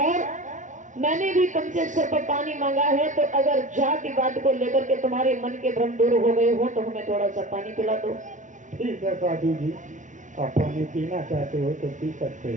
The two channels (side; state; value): left; late; 0.37 ms